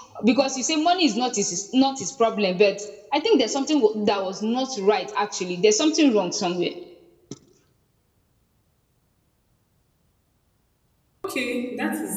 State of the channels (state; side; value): identical; both; correlation 1.00